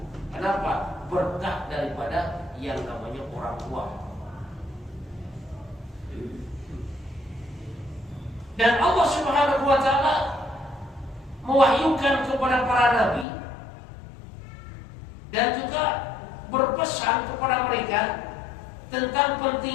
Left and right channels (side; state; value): right; drops out; at 13.2 s